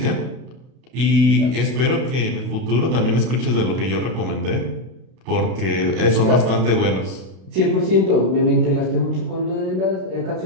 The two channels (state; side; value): late; left; 32 ms